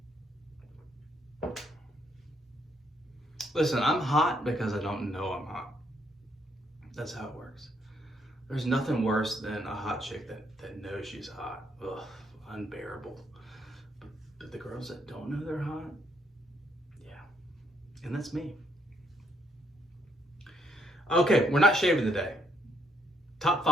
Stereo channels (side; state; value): both; normal; correlation 0.72